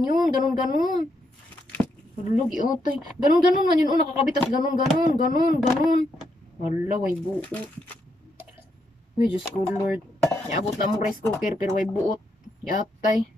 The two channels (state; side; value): normal; both; correlation 0.79